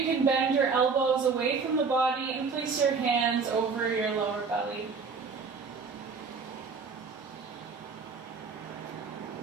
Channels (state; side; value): quieter; left; 5.1 dB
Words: can bend your elbows away from the body and place your hands over your lower belly.